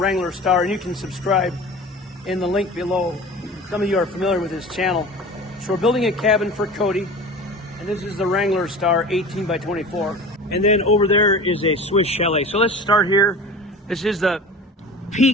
Star, and you can subscribe in the link below. Some of you are familiar with his channel. So we're building a cabin for Cody, and this is the Wrangler Star 18 by 24. And then over there is a Swiss Chalet. So let's start here. This is the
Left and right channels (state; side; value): normal; both; correlation 0.37